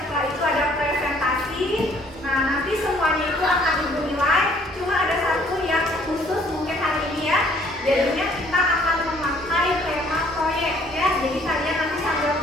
itu ada presentasi. Nah, nanti semuanya itu akan ibu nilai. Cuma ada satu yang khusus mungkin hari ini ya. Jadinya kita akan memakai tema proyek ya. Jadi kalian nanti sambil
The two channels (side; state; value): both; normal; correlation 0.60